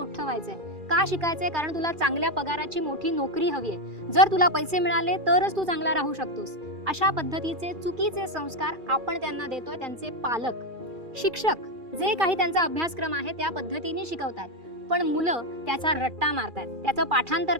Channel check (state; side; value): late; left; 2.4 ms